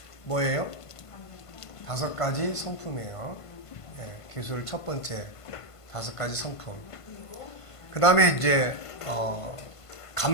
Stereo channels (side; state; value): right; late; 1.5 ms